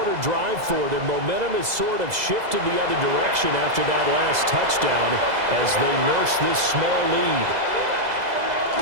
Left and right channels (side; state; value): left; late; 2.0 ms